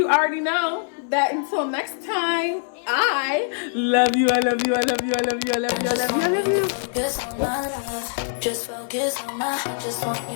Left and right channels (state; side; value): silent; right; digital silence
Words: already know that. Until next time, I love you. I love you. I love you. I love you. I love you. I love you. I love you. Focus on my love. Just focus on my. I just want